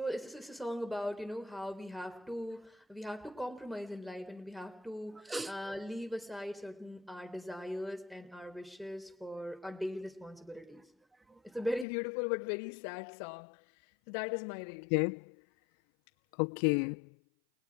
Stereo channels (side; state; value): right; drops out; at 11.9 s